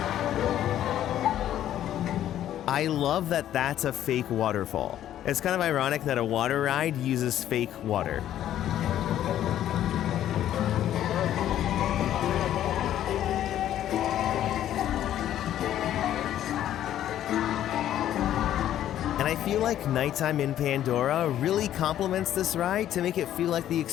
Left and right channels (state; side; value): quieter; right; 11.7 dB